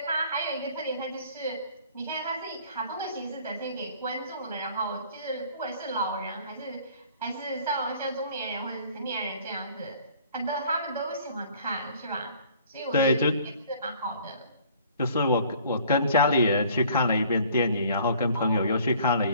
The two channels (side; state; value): both; inverted; correlation -0.54